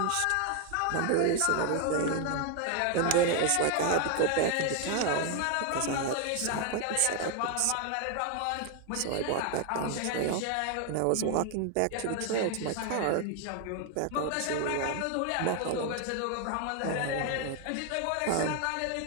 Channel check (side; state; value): both; different; correlation 0.00